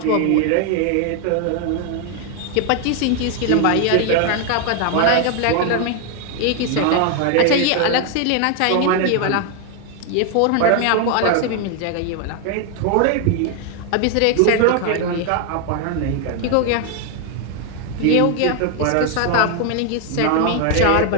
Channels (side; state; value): both; different; correlation 0.00